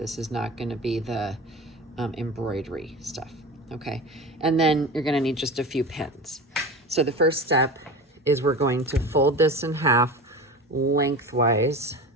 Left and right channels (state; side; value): normal; both; correlation 0.31